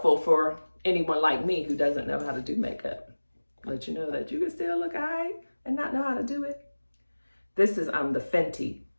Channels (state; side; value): inverted; both; correlation -1.00